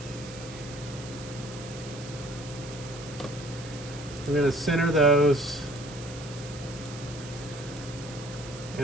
I'm going to center those.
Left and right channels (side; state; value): right; noise; hiss, 14 dB below the sound